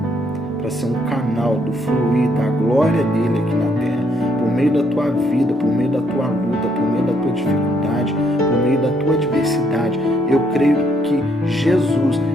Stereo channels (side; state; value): both; normal; correlation 0.71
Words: para ser um canal do fluir da glória dele aqui na terra, por meio da tua vida, por meio da tua luta, por meio da tua dificuldade, por meio da tua adversidade. Eu creio que Jesus,